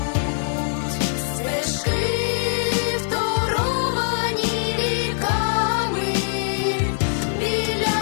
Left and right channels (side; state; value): right; silent; digital silence